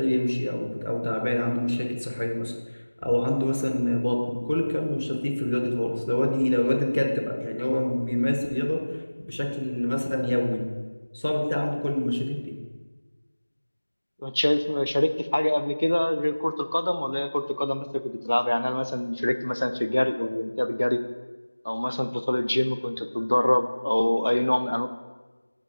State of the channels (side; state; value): both; inverted; correlation -1.00